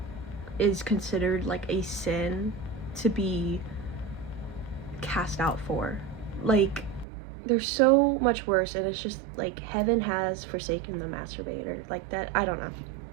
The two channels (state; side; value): drops out; left; at 7.1 s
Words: is considered like a sin to be cast out for. Like, there's so much worse, and it's just like heaven has forsaken the masturbator. Like that, I don't know.